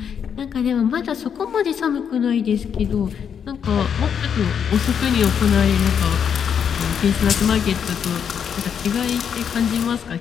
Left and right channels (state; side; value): quieter; right; 7.7 dB